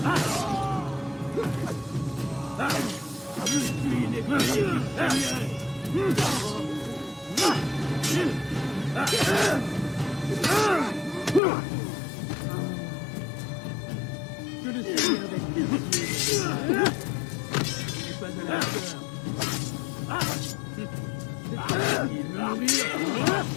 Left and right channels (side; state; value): right; drops out; at 11.4 s